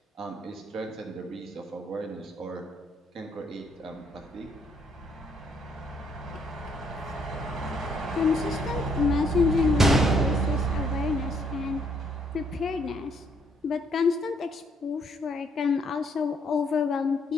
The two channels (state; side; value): normal; both; correlation 0.69